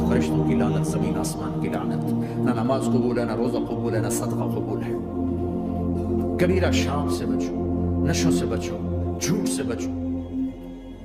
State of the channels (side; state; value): both; identical; correlation 1.00